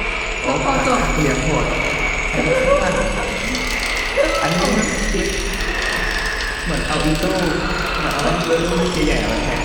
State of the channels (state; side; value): identical; both; correlation 1.00